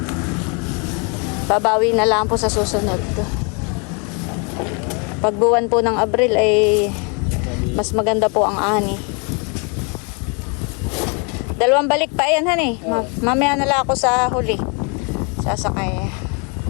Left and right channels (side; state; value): right; quieter; 34.9 dB